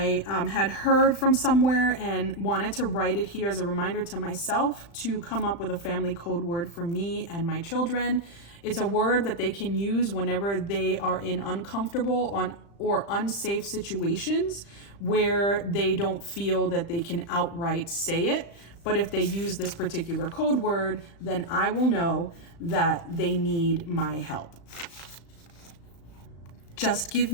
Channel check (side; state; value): right; late; 35 ms